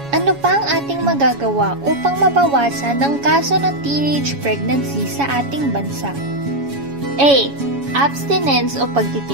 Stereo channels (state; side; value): late; left; 7.1 ms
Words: Ano pa ang ating magagawa upang mabawasan ang kaso ng teenage pregnancy sa ating bansa? A. abstinence o